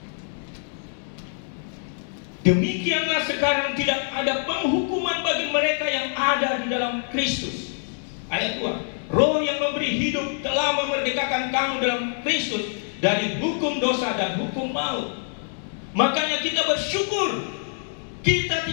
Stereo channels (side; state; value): right; silent; 62 dB below the other